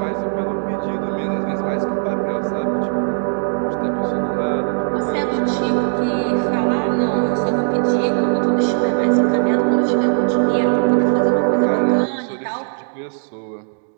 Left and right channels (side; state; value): left; silent; digital silence